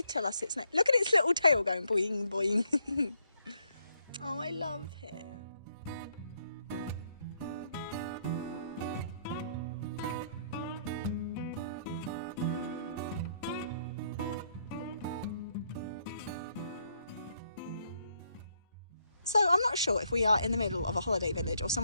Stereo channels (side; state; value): both; inverted; correlation -0.73